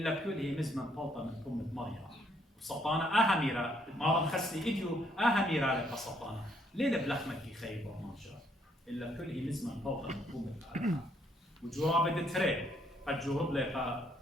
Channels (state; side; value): normal; both; correlation 0.70